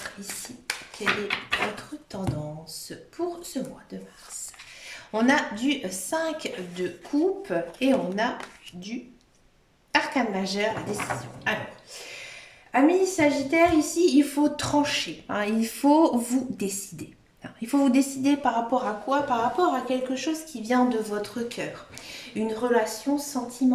ici quelle est votre tendance pour ce mois de mars. On a du 5 de coupe et on a du arcane majeur, la décision. Alors, amis Sagittaire, ici, il faut trancher, hein, il faut vous décider. Il faut vous décider par rapport à quoi? Par rapport à quelque chose qui vient de votre cœur, une relation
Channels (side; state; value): both; identical; correlation 1.00